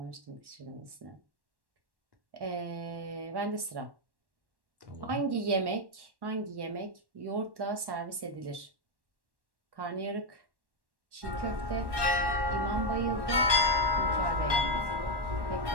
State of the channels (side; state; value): left; late; 1.1 ms